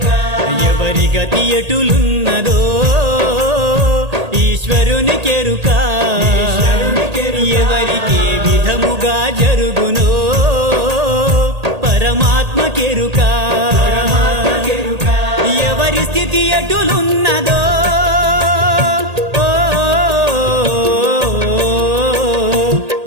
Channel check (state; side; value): late; left; 1.8 ms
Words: ఎవరి గతి ఎటులున్నదో ఈశ్వరునికెరుక ఎవరికి విధముగా జరుగునో పరమాత్మకెరుక ఎవరి స్థితి ఎటులున్నదో